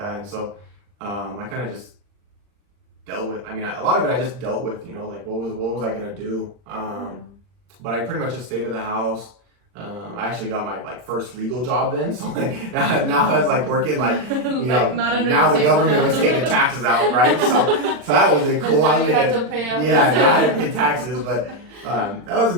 and so I kind of just dealt with. I mean, a lot of it I just dealt with, you know, like what was I gonna do? But I pretty much just stayed at the house. I actually got my like first legal job then, so like now I was like working like you know now the government was taking taxes out, right? So that was cool. I was making now I had to pay taxes, but that was a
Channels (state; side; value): late; left; 40 ms